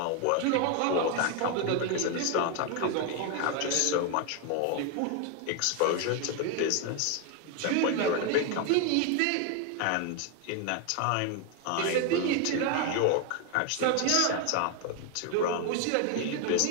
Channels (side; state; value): both; different; correlation 0.01